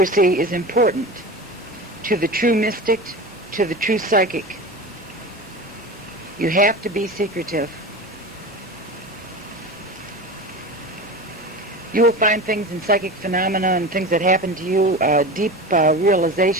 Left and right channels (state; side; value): normal; both; correlation 0.29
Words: is important to the true mystic, to the true psychic. You have to be secretive. You will find things in psychic phenomena and things that happen to you, deep